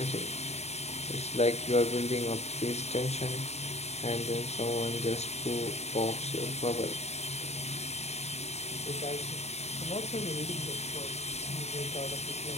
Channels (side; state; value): right; late; 0.31 ms